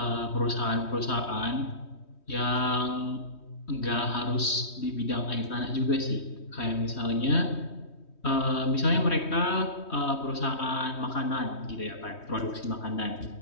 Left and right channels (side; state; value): right; late; 3.2 ms